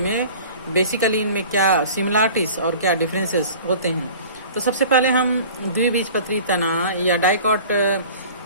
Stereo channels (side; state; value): both; inverted; correlation -0.43